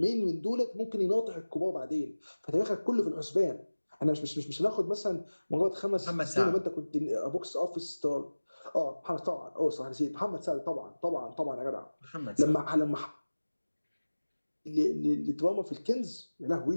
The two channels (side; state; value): both; inverted; correlation -1.00